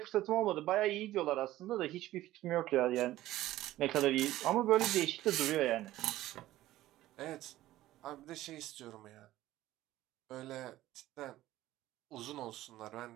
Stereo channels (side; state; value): left; quieter; 15.3 dB